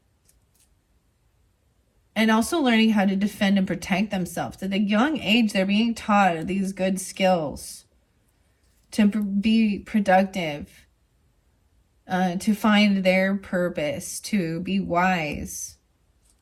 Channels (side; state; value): both; identical; correlation 1.00